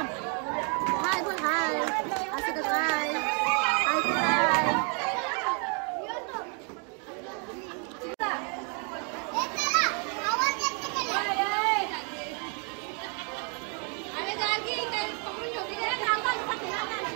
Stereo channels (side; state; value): left; quieter; 38.1 dB